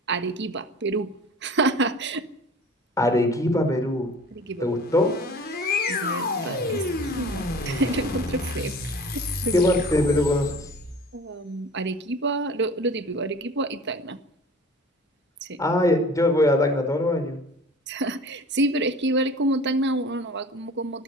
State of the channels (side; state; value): both; normal; correlation 0.43